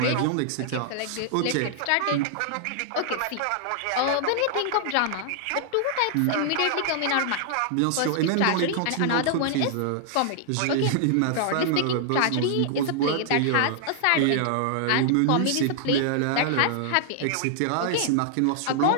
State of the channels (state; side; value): different; both; correlation -0.01